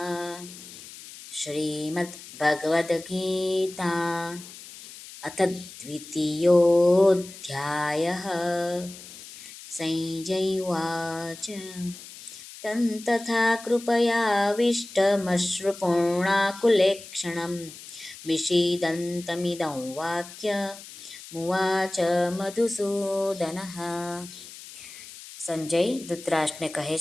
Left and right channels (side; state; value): left; noise; hiss, 16 dB below the sound